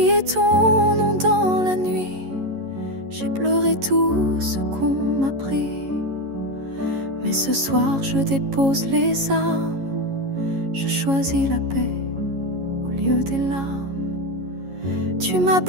ton nom dans la nuit, j'ai pleuré tout ce qu'on m'a pris. Mais ce soir je dépose les armes, je choisis la paix au lieu des larmes. Tu m'as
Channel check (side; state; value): left; late; 11 ms